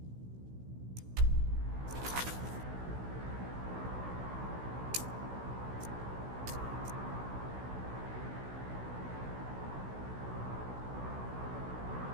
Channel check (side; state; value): left; late; 16 ms